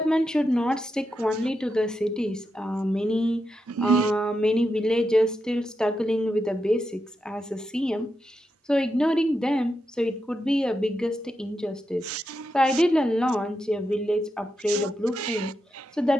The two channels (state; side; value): normal; both; correlation 0.86